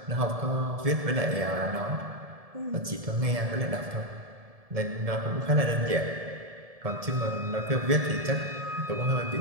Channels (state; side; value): late; left; 1.7 ms